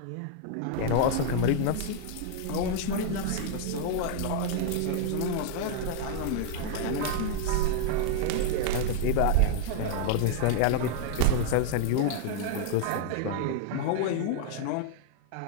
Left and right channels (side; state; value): both; different; correlation 0.00